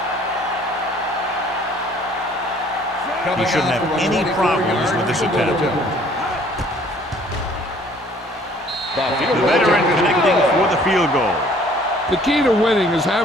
He shouldn't have any problems with this attempt. The veteran connecting for the field goal. The key to winning is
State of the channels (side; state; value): both; normal; correlation 0.57